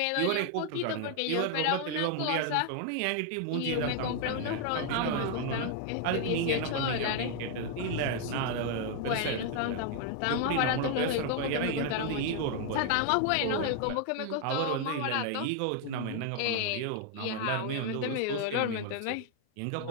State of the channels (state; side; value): different; both; correlation 0.00